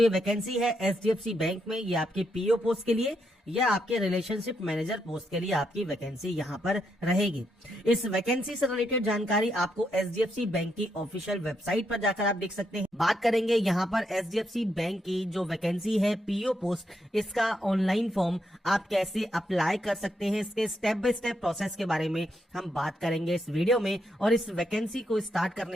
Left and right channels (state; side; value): normal; both; correlation 0.80